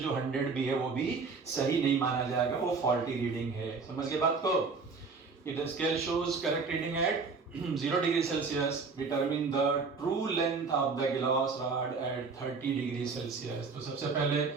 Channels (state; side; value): quieter; left; 4.6 dB